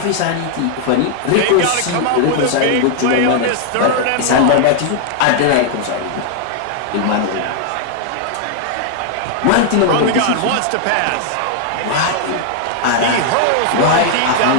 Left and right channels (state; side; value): different; both; correlation 0.00